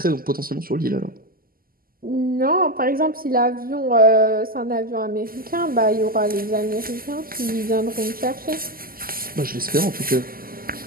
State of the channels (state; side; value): late; left; 0.42 ms